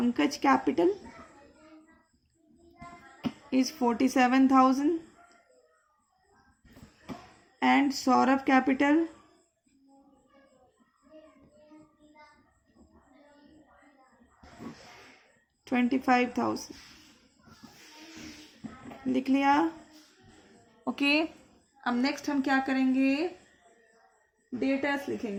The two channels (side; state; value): both; identical; correlation 1.00